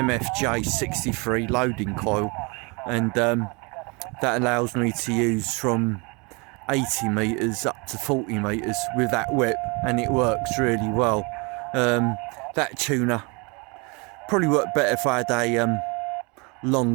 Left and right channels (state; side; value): quieter; left; 29.9 dB